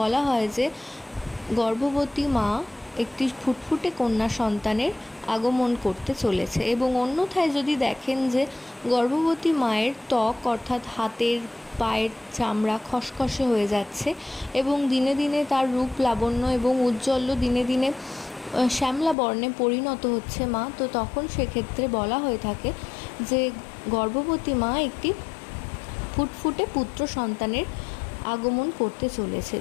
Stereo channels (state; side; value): drops out; right; at 19.2 s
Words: হয় যে গর্ভবতী মা একটি ফুটফুটে কন্যা সন্তানের আগমন করতে চলেছে। এবং অন্যথায় যদি দেখেন যে গর্ভবতী মায়ের ত্বক অর্থাৎ হাতের পায়ের চামড়া খসখসে হয়ে যাচ্ছে এবং দিনে দিনে তার রূপ লাবণ্য এবং উজ্জ্বল্য দিনে দিনে শ্যামলা বর্ণে পরিণত হচ্ছে মা, তো তখন সেক্ষেত্রে বলা হয়ে থাকে যে গর্ভবতী মা একটি ফুটফুটে পুত্র সন্তানের আগমন করতে চলেছে।